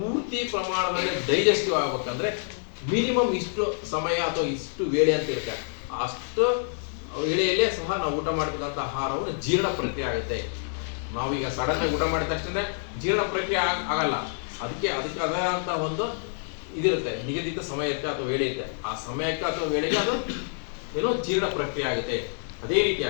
ಪ್ರಮಾಣದಲ್ಲಿ ಡೈಜೆಸ್ಟಿವ್ ಆಗ್ಬೇಕಂದ್ರೆ ಮಿನಿಮಮ್ ಇಷ್ಟು ಸಮಯ ಅಥವಾ ಇಷ್ಟು ವೇಳೆ ಅಂತ ಇರುತ್ತೆ. ಅಷ್ಟು ವೇಳೆಯಲ್ಲೇ ಸಹ ನಾವು ಊಟ ಮಾಡ್ತಕ್ಕಂಥ ಆಹಾರವನ್ನು ಜೀರ್ಣ ಪ್ರಕ್ರಿಯೆ ಆಗುತ್ತೆ. ನಾವೀಗ ಸಡನ್ ಆಗಿ ಊಟ ಮಾಡಿದ ತಕ್ಷಣ ಜೀರ್ಣ ಪ್ರಕ್ರಿಯೆ ಆಗಲ್ಲ. ಅದಕ್ಕೆ ಅದಂತ ಒಂದು ಇದಿರುತ್ತೆ, ನಿಗದಿತ ಸಮಯ ಇರುತ್ತೆ ಅಥವಾ ವೇಳೆ ಇರುತ್ತೆ. ಆ ಸಮಯಕ್ಕೆ ಅಥವಾ ವೇಳೆಗೆ ಅದು ಏನೋ ಜೀರ್ಣ ಪ್ರಕ್ರಿಯೆ ಆಗುತ್ತೆ. ಅದೇ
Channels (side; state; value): right; silent; 60 dB below the other